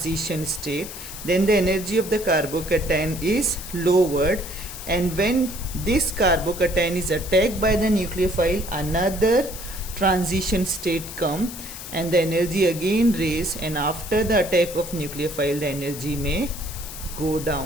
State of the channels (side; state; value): left; noise; hiss, 11 dB below the sound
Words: state. Then the energy of the carbocation is lowered, and when this carbocation is attacked by the nucleophile, another transition state come and the energy again raise, and after the attack of nucleophile the energy may go